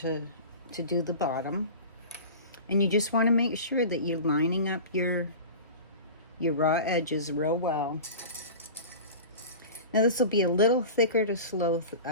do the bottom. And you just want to make sure that you're lining up your raw edges real well. Now this will be a little thicker to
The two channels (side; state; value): both; inverted; correlation -0.35